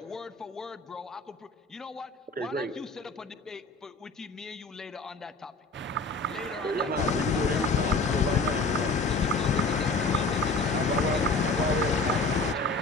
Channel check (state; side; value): quieter; right; 3.3 dB